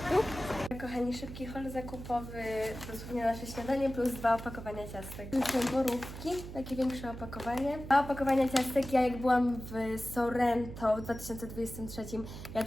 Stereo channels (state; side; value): noise; right; hum, 11 dB below the sound